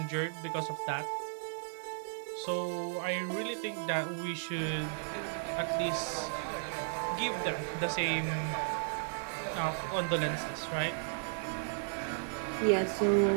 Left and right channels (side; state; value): left; silent; digital silence